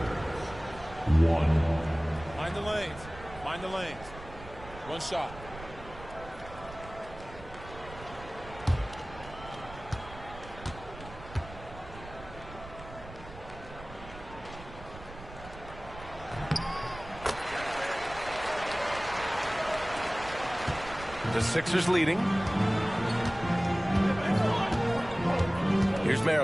1. Mind the lanes. Mind the lanes. 1 shot. The Sixers leading. Here's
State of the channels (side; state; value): right; noise; rumble, 15 dB below the sound